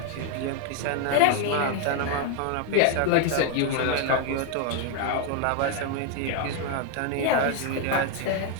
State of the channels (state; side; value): different; both; correlation 0.01